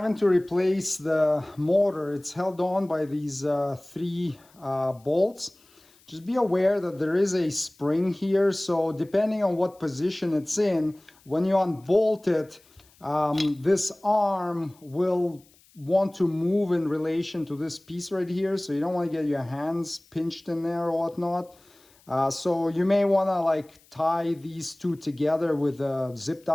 to replace the motor, it's held on by these 3 bolts. Just be aware that there is a spring here, so depending on what position it's in, when you unbolt it, this arm will want to move in relation to this piece right here, so you don't want to get your hands pinched in there or whatnot. So you may want to like tie these 2 together with a zip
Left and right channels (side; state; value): left; noise; hiss, 30 dB below the sound